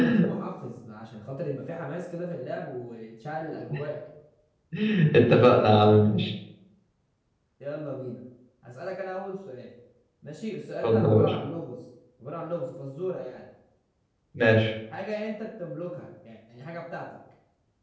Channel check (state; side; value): identical; both; correlation 1.00